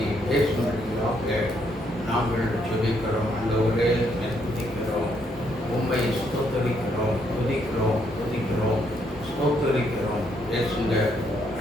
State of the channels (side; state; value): both; normal; correlation 0.73